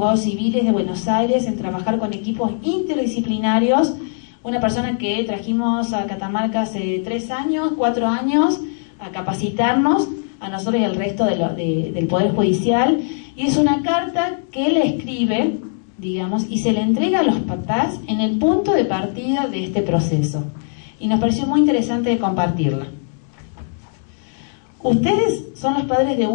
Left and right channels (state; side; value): silent; right; digital silence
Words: civiles de Buenos Aires en trabajar con equipos interdisciplinarios. Una persona que trajimos a Catamarca hace 4 años, a capacitarnos, a nosotros y al resto del Poder Judicial, y es una carta que él escribe, digamos, y se le entrega a los papás en el punto de partida de este proceso. Y nos pareció muy interesante de compartirla. Ustedes son los padres de